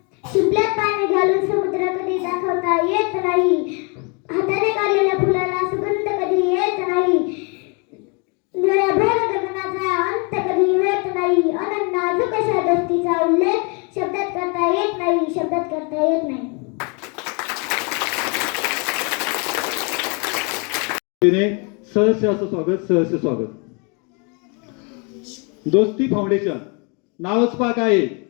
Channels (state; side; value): quieter; right; 33.8 dB